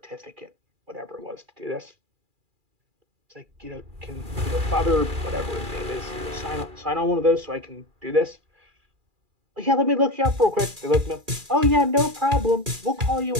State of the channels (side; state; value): left; late; 2.4 ms